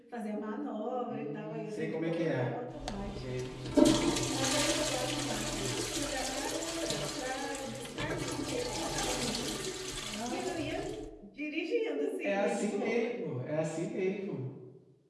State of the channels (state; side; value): identical; both; correlation 1.00